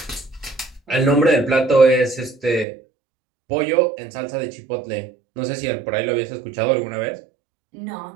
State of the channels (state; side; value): drops out; left; at 2.7 s